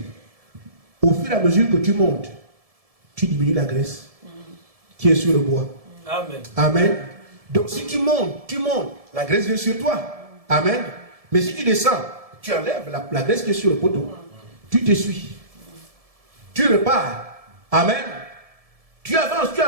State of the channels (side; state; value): left; late; 1.7 ms